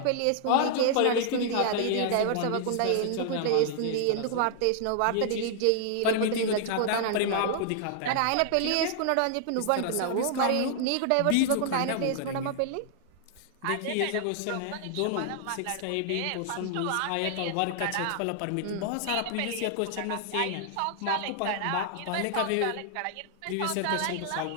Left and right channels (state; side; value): different; both; correlation -0.01